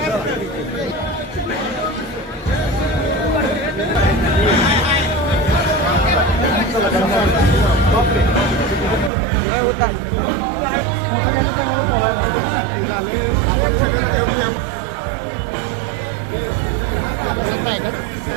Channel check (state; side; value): drops out; left; at 9.1 s